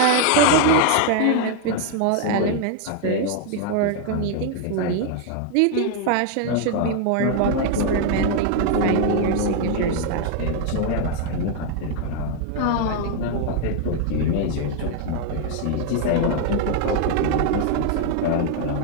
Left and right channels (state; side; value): different; both; correlation 0.00